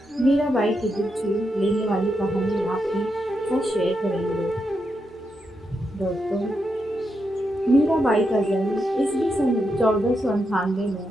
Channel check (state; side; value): normal; both; correlation 0.84